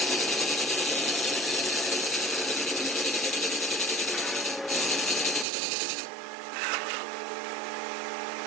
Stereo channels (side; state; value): left; drops out; at 5.5 s